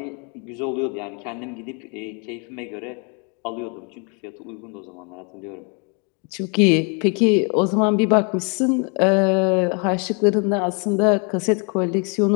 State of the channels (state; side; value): quieter; right; 36.0 dB